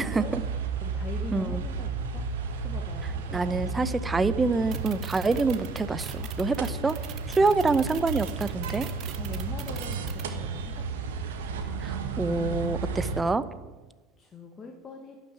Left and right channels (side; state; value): left; quieter; 3.4 dB